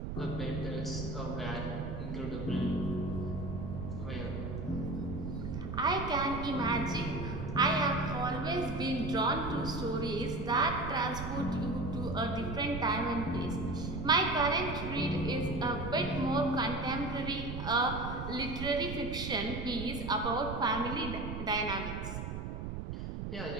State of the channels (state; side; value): noise; right; rumble, 5 dB below the sound